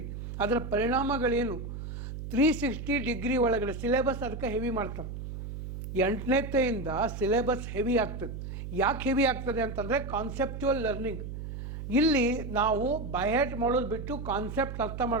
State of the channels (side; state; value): right; noise; hum, 8 dB below the sound